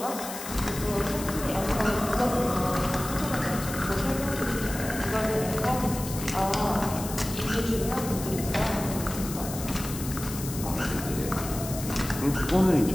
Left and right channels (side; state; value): left; noise; hiss, 9 dB below the sound